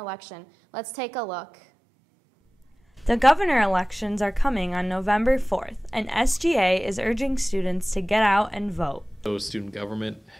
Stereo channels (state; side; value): normal; both; correlation 0.98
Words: Let's take a look. The governor elections are coming on November 4th, and SGA is urging students to get out and vote. So student government